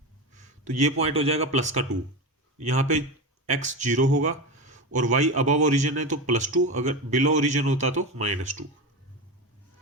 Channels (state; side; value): normal; both; correlation 0.20